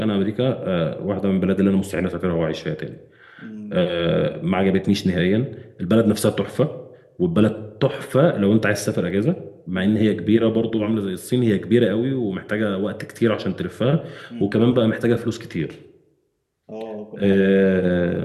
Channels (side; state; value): both; identical; correlation 1.00